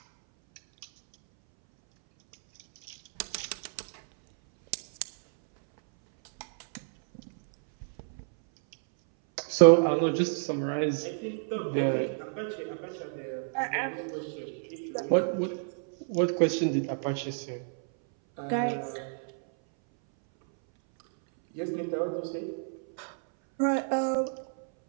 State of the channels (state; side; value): silent; left; 58 dB below the other